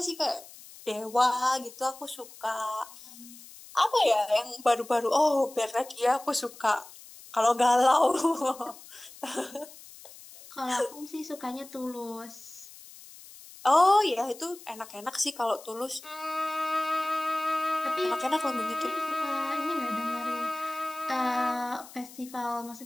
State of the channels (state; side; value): noise; left; hiss, 19 dB below the sound